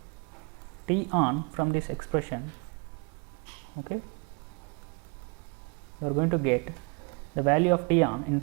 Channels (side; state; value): left; quieter; 33.9 dB